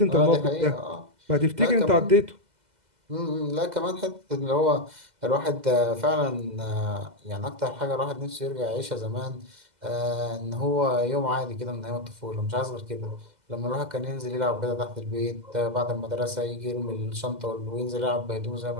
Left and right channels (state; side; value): late; left; 2.0 ms